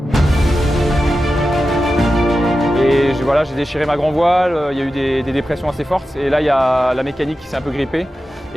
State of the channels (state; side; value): normal; both; correlation 0.92